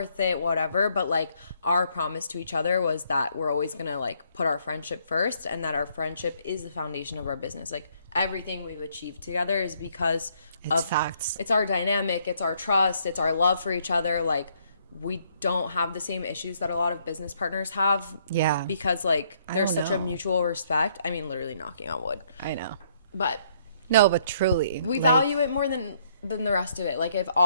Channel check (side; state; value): both; inverted; correlation -0.68